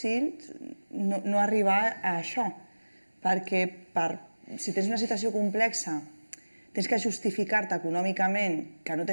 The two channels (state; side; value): inverted; both; correlation -1.00